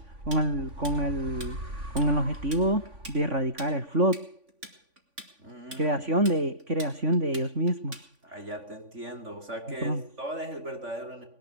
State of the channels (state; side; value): late; left; 3.5 ms